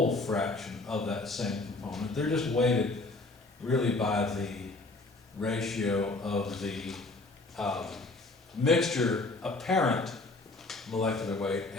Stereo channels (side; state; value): right; quieter; 3.2 dB